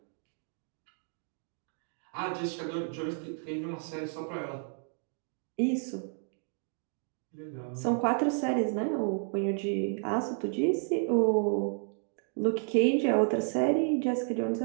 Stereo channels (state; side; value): silent; left; 55 dB below the other